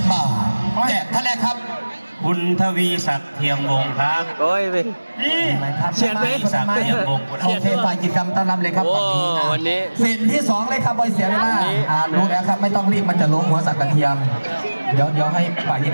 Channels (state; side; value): inverted; both; correlation -1.00